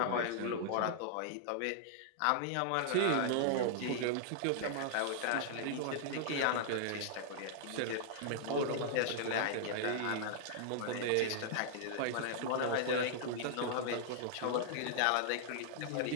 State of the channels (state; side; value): different; both; correlation -0.01